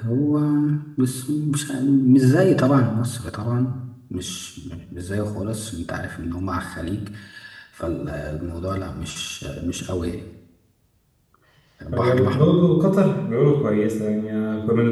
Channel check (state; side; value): identical; both; correlation 1.00